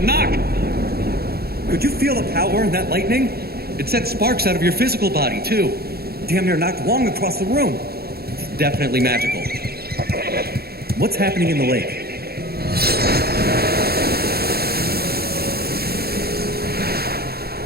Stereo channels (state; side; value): late; left; 0.45 ms